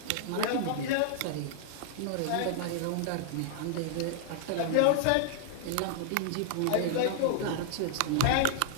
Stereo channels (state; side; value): different; both; correlation -0.01